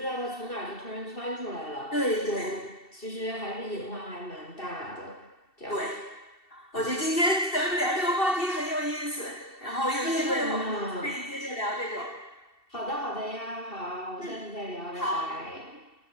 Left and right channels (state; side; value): late; right; 2.7 ms